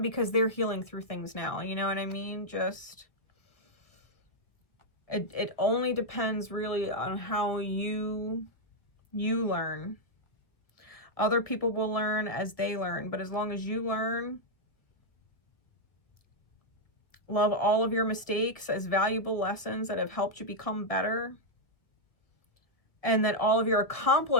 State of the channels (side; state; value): right; late; 1.4 ms